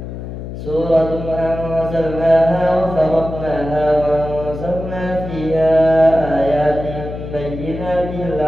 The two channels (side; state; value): left; noise; hum, 9 dB below the sound